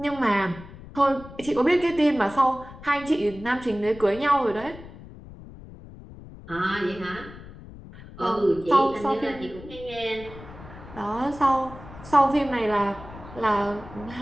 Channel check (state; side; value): noise; left; rumble, 16 dB below the sound